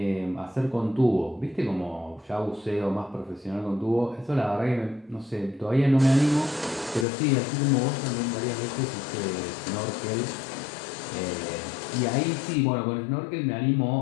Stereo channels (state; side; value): drops out; right; at 7.1 s